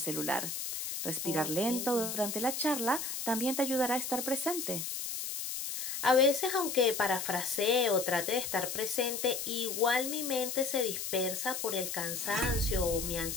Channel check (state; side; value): noise; left; hiss, 4 dB below the sound